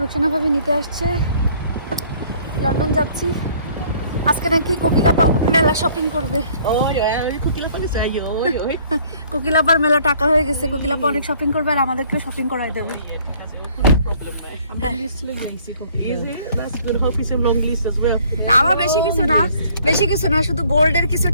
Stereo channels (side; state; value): both; inverted; correlation -0.58